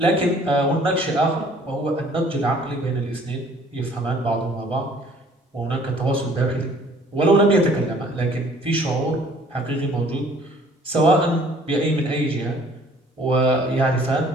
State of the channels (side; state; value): both; normal; correlation 0.56